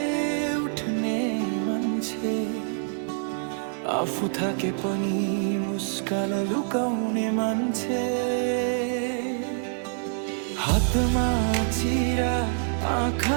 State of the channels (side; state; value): left; silent; digital silence